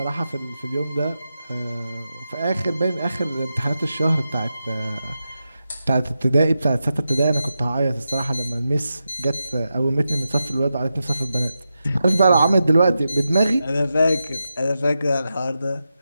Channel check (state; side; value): inverted; both; correlation -0.89